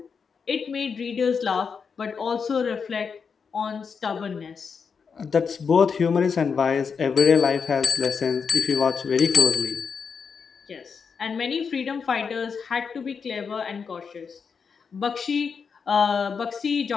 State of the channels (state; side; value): quieter; right; 5.9 dB